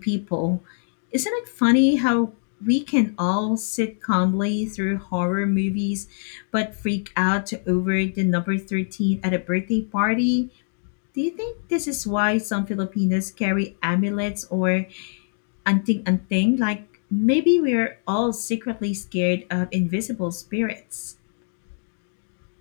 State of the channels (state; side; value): silent; right; digital silence